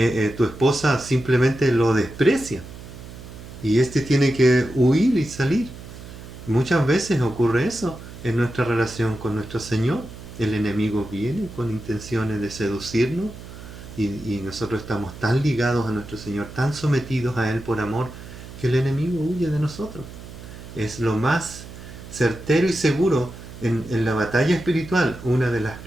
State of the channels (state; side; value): noise; right; hum, 15 dB below the sound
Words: esposa simplemente lo desprecia. Y este tiene que huir y salir. Muchas veces ocurre eso en nuestra relación con nuestro Señor. El enemigo viene con intenciones de seducirnos y nosotros estamos tan ligados a nuestro Señor, tan sometidos a Él por amor, que el enemigo huye de nosotros. Es lo más certero y seguro en la batalla espiritual. Una de las